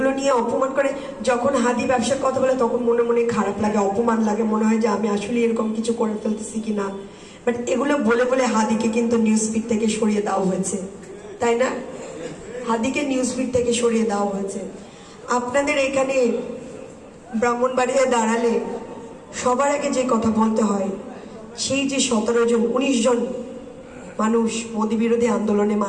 নিয়ে অপমান করে, যখন হাদি ব্যবসার কথা বলে তখন মনে মনে খারাপ লাগে, অপমান লাগে, মনে হয় যে আমি আসলে এরকম কিছু করে ফেলতেছি কিনা। বাট এগুলো বলে বলে হাদিকে কিন্তু নিউজ ফিড থেকে সরিয়ে দেওয়া হয়েছে, তাই না? হাদিকে নিউজ ফিড থেকে সরিয়ে দেওয়া হয়েছে। আপনাদের এখানে ব্রাহ্মণবাড়িয়ায় দাঁড়ালে সবার আগে যে কথা বলতে হয়, সেই যে 17 জন 19 জন মানুষ মোদী বিরোধী আন্দোলনে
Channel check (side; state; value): both; identical; correlation 1.00